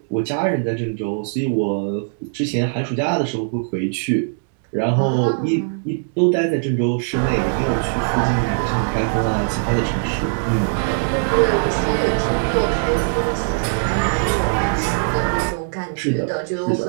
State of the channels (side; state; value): left; silent; digital silence